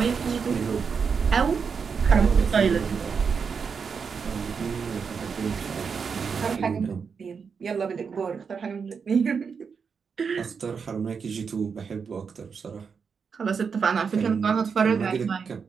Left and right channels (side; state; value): left; quieter; 5.9 dB